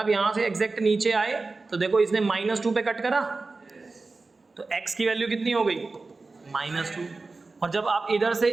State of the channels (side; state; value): left; quieter; 3.7 dB